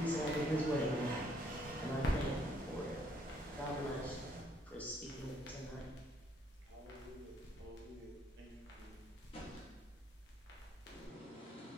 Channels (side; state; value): both; normal; correlation 0.68